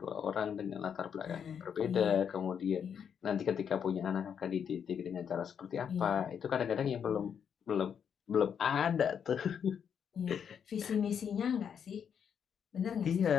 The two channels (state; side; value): quieter; right; 7.7 dB